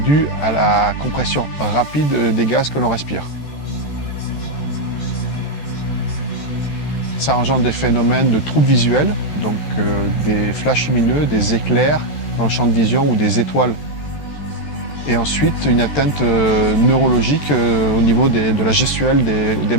à la compression rapide des gaz que l'on respire. Ça engendre des phénomènes de troubles visuels, donc des flashs lumineux, des éclairs dans le champ de vision ou des étoiles. Et ensuite, une atteinte neurologique au niveau de la gestuelle des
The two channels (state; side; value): late; right; 14 ms